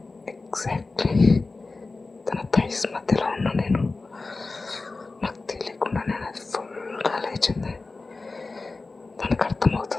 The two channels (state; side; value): quieter; right; 3.7 dB